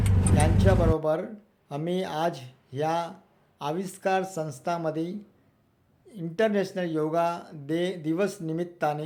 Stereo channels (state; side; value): identical; both; correlation 1.00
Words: यांच्याबरोबर आम्ही आज ह्या आविष्कार संस्थामध्ये इंटरनॅशनल योगा दिवस निमित्ताने